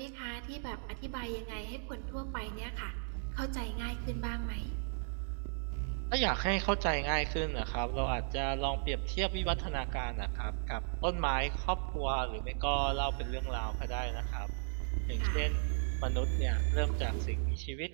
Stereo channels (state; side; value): silent; left; digital silence